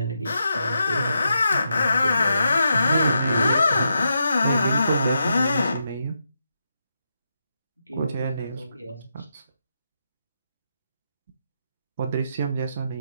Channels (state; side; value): inverted; both; correlation -0.84